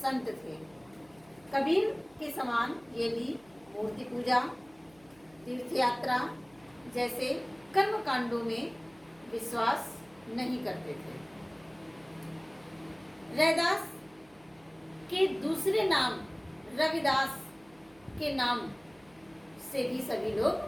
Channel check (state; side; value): noise; right; hum, 28 dB below the sound